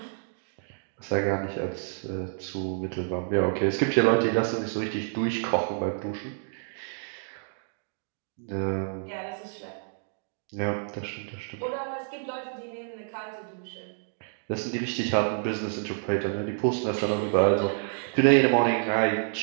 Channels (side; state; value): left; silent; digital silence